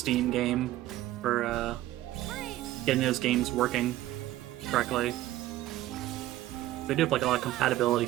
game for getting those games working correctly. They do have like a lot of compatibility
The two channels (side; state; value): left; quieter; 15.2 dB